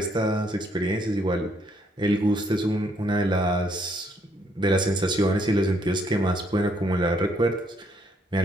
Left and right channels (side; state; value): both; normal; correlation 0.70